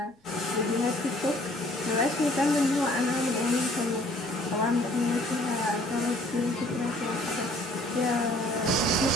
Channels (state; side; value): normal; both; correlation 0.57